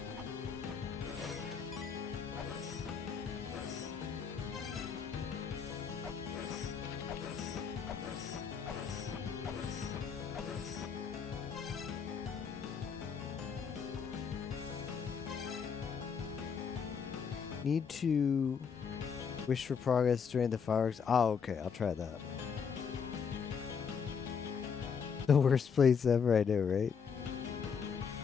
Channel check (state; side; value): quieter; right; 6.5 dB